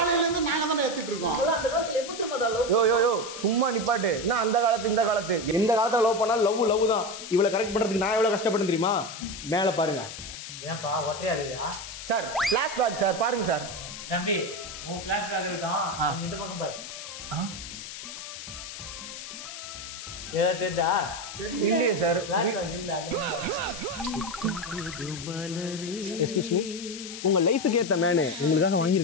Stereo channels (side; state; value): left; noise; hiss, 10 dB below the sound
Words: இருந்து நாங்க தான ஏத்திட்டு இருக்கோம். அந்த காலத்துல எப்படி மாடா லவ்? யோ சும்மா நிப்பாட்டு. என்ன அந்த காலத்து இந்த காலத்து எந்த காலத்துல லவ் பண்ணாலும் லவ் தான். இவ்வளவு கரெக்ட் பண்றதுக்கு நான் எவ்வளவு கஷ்டப்பட்டேன் தெரியுமா? மேல பாருங்க. ஏன்பா ஒற்றையா இருக்கா? சார் ஃபிளாஷ் பேக் சார், பாருங்க சார். தம்பி உன் ஃபிளாஷ் பேக் இருக்கான், இந்த பக்கம் பாரு. ஏதா தெரியுதா? இல்லையே சார். ஃபிளாஷ் பேக் இல்ல. எக்ஸ்கியூஸ் மீ, உங்க லைஃபுக்கு ஏத்த மேனு உங்களுக்காக